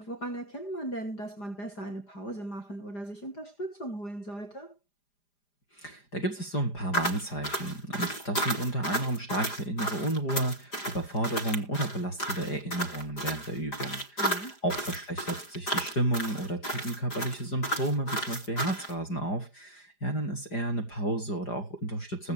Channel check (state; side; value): late; right; 4.9 ms